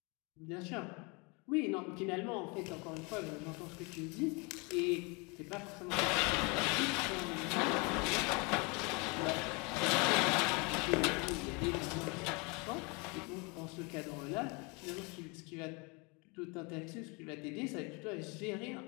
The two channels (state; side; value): quieter; right; 30.0 dB